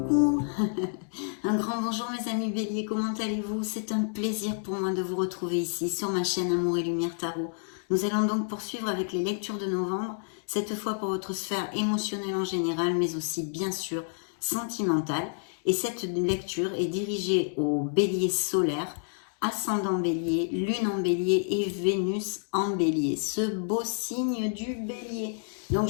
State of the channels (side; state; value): right; silent; 59 dB below the other